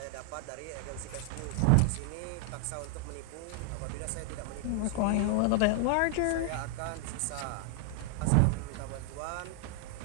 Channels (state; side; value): different; both; correlation 0.00